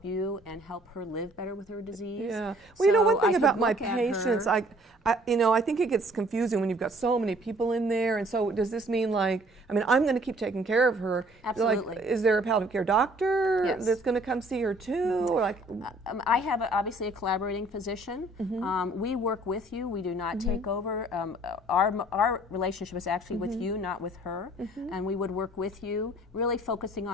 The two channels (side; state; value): both; normal; correlation 0.57